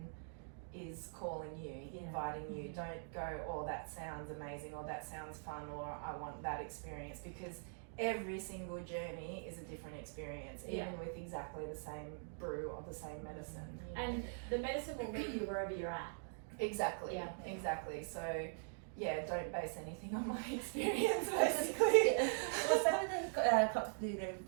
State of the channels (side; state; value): left; silent; digital silence